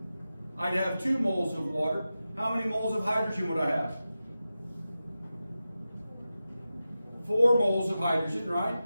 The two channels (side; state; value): both; inverted; correlation -0.93